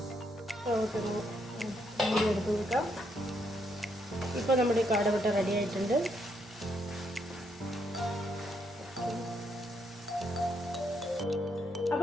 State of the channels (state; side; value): normal; both; correlation 0.76